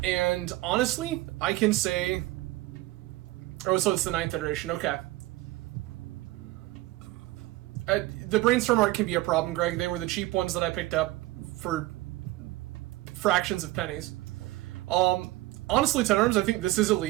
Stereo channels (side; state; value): left; quieter; 18.0 dB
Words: honestly, I can say... Oh, so it's the 9th iteration, okay. The Brainstorm art can be a problem, Greg. They were the cheap ones that I picked up for fractions of pennies. Honestly, Ten Arms, I think this is a